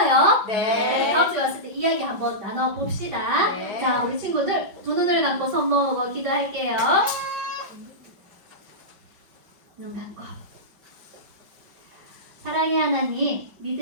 네. 다음 주에 왔을 때 이야기 한번 나눠봅시다. 네. 자, 우리 친구들 두 눈을 감고 손 모으고 기도할게요. 눈 감고. 사랑의 하나님,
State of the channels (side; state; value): left; late; 5.4 ms